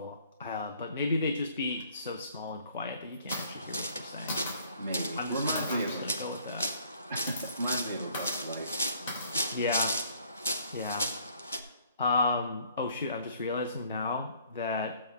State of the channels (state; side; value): inverted; both; correlation -0.60